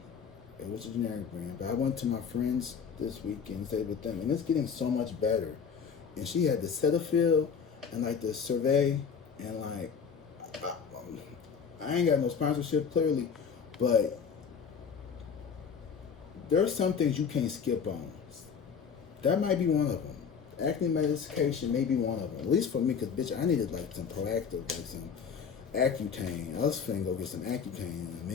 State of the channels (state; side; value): quieter; right; 6.5 dB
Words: It was a generic brand, but I went to my friends this weekend and stayed with them, and it's getting so much better. And she had the Cetaphil and like the Survey, and like I ain't got no sponsorship clearly, but there's some things you can't skip on. That might be one of them. Acne medication may be one of them. At least for me, because bitch, I needed like some proactive, like some Accutane. I was finna go get some Accutane in a